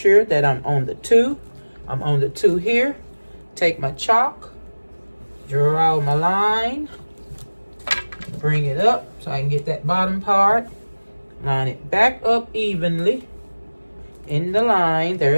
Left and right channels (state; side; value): inverted; both; correlation -1.00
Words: that I'm on the 2. I'm on the 2 here. Take my chalk, draw my line, bring it up so I can get that bottom part. Line it back up evenly in the line.